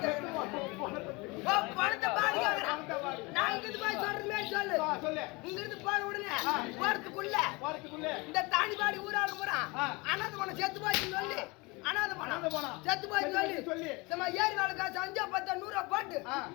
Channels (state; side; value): quieter; right; 25.8 dB